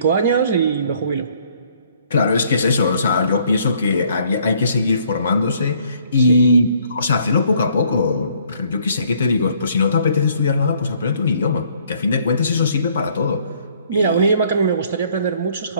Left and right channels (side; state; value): both; inverted; correlation -0.63